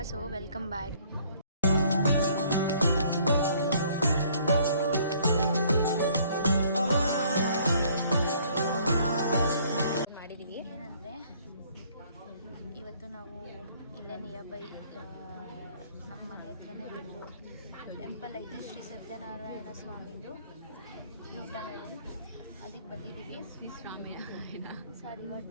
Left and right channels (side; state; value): both; inverted; correlation -0.60